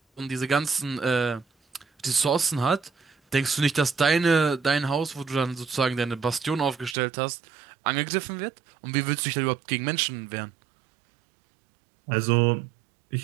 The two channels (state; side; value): drops out; left; at 7.0 s